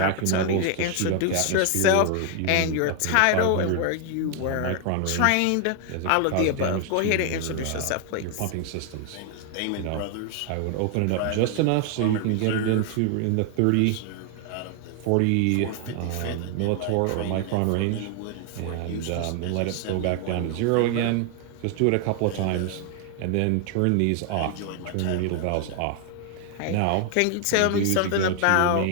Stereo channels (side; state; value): both; different; correlation 0.00